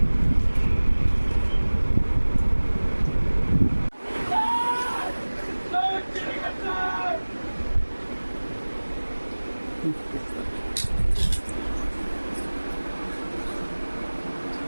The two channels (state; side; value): inverted; both; correlation -1.00